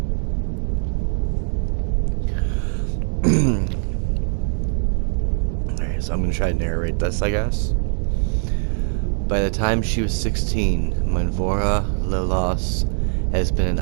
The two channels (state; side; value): silent; left; 64 dB below the other